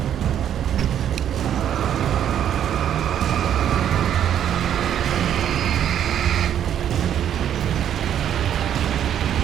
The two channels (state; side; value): quieter; left; 9.9 dB